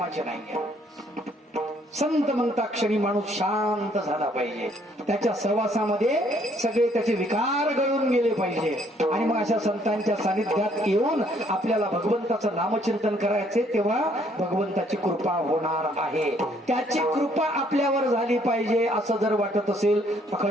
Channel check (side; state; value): both; normal; correlation 0.65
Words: नाही. संत म्हणता क्षणी माणूस शांत झाला पाहिजे, त्याच्या सहवासामध्ये सगळे त्याचे विकार गळून गेले पाहिजे, आणि मग अशा संतांच्या सानिध्यात येऊन आपल्याला भगवंताचं नामचिंतन करायचे, तेव्हा भगवंताची कृपा होणार आहे. त्याची कृपा आपल्यावर झाली पाहिजे असं जर वाटत असेल,